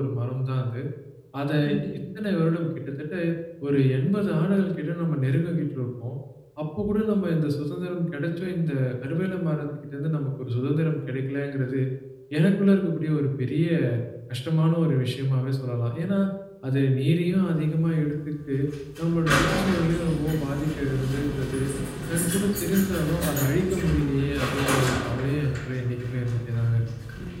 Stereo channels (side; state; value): both; identical; correlation 1.00